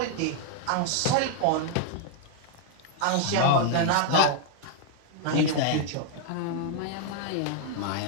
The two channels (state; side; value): different; both; correlation 0.00